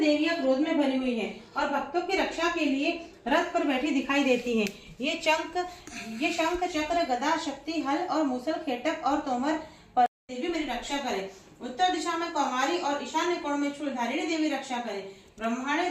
देवियां क्रोध में भरी हुई हैं और भक्तों की रक्षा के लिए रथ पर बैठी दिखाई देती हैं। ये शंख, चक्र, गदा, शक्ति, हल और मूसल, खेटक और तोमर पर देवी मेरी रक्षा करे। उत्तर दिशा में कौमारी और ईशान्य कोण में शूलधारिणी देवी रक्षा करे। ब्रह्मांडे,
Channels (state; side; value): identical; both; correlation 1.00